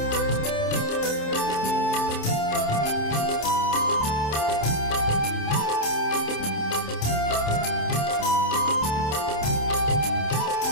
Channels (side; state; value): right; late; 27 ms